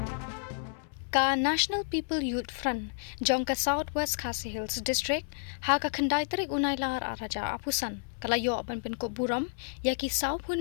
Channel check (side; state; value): right; silent; 57 dB below the other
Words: Ka National People Youth Front jong ka Southwest Khasi Hills District ha ka khandai tarik unai lar araja apusan kalayo ban Pynkup Burom ya ki